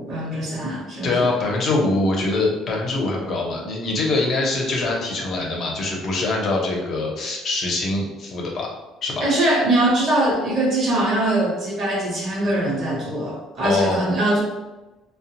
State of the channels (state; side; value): normal; both; correlation 0.60